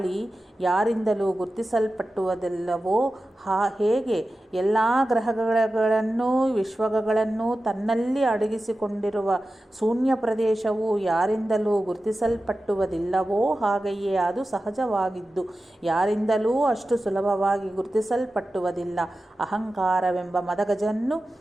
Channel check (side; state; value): both; normal; correlation 0.94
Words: ಯಾರಿಂದಲೂ ಗುರುತಿಸಲ್ಪಟ್ಟುವುದಿಲ್ಲವೋ ಹೇಗೆ ಎಲ್ಲ ಗ್ರಹಗಳನ್ನು ವಿಶ್ವಗಳನ್ನು ತನ್ನಲ್ಲಿ ಅಡಗಿಸಿಕೊಂಡಿರುವ ಶೂನ್ಯ ಪ್ರದೇಶವು ಯಾರಿಂದಲೂ ಗುರುತಿಸಲ್ಪಟ್ಟುವುದಿಲ್ಲವೋ ಹಾಗೆಯೇ ಅದು ಸಹಜವಾಗಿದ್ದು ಯಾರಿಂದಲೂ ಅಷ್ಟು ಸುಲಭವಾಗಿ ಗುರುತಿಸಲ್ಪಟ್ಟುವುದಿಲ್ಲ. ಅಹಂಕಾರವೆಂಬ ಮದಗಜನ್ನು